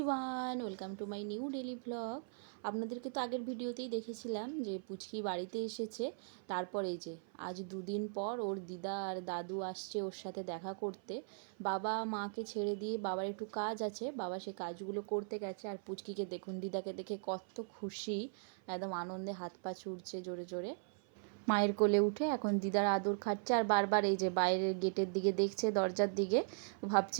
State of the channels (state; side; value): silent; left; 52 dB below the other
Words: welcome to my new daily vlog. আপনাদেরকে তো আগের ভিডিওতেই দেখেছিলাম যে পুচকি বাড়িতে এসেছে। তারপর এই যে আজ দুদিন পর ওর দিদা আর দাদু আসছে ওর সাথে দেখা করতে। বাবা মাকে ছেড়ে দিয়ে বাবার একটু কাজ আছে, বাবা সে কাজগুলো করতে গেছে। আর পুচকিকে দেখুন, দিদাকে দেখে কত খুশি, একদম আনন্দে হাত পা ছুটছে জোরে জোরে। মায়ের কোলে উঠে এখন দিদার আদর খাচ্ছে আর বারবার এই যে বাইরের গেটের দিকে দেখছে, দরজার দিকে,